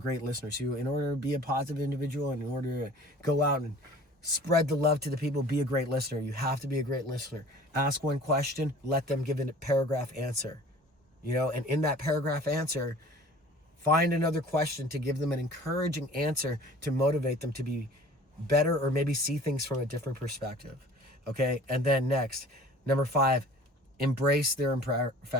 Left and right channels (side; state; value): both; normal; correlation 0.47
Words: listeners. In order to be a positive individual and in order to go out and spread the love to the people, be a great listener. You have to be a great listener. Ask one question, let them give a paragraph answer. You know, and in that paragraph answer, find another question to give them an encouraging answer to motivate them to be better, or maybe see things from a different perspective. Okay, and then next, number 5, embrace their